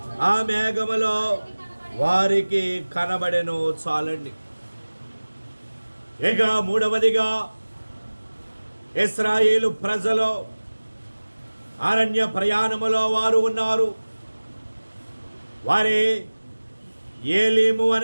ఆ మేఘములో వారికి కనబడెను. చాలండి. ఇక మూడవదిగా ఇశ్రాయేలు ప్రజలు అరణ్య ప్రయాణములో వారు ఉన్నారు. వారి ఏలీము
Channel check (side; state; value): both; inverted; correlation -1.00